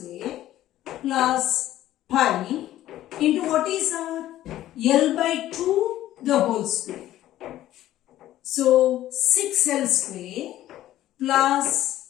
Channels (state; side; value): quieter; right; 13.7 dB